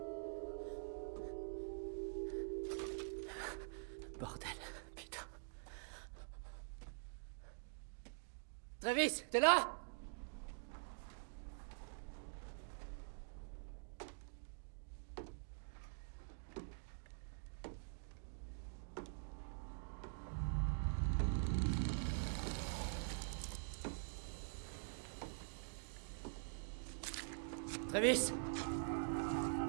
Bordel, putain. Travis, t'es là? Travis!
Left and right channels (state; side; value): silent; left; digital silence